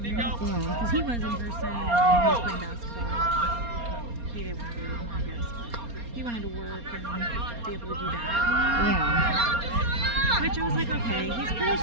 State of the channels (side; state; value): left; late; 4.3 ms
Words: Yeah. Because he was in person, and he was playing basketball. He didn't want to do it anymore, I guess, but he wanted to work and be able to do that. Yeah. Which I was like, okay, he's pretty